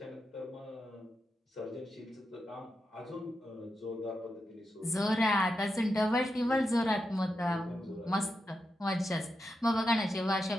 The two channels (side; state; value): both; normal; correlation 0.87